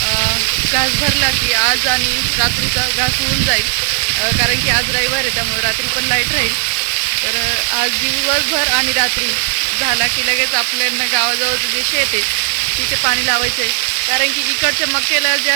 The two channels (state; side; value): silent; left; digital silence